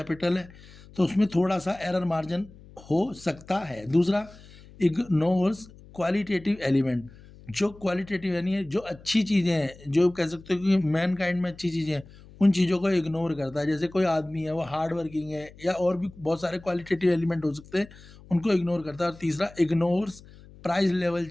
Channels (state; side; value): noise; left; hum, 21 dB below the sound